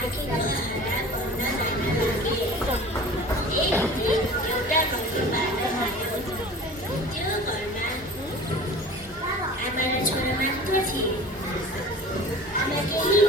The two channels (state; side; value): normal; both; correlation 0.40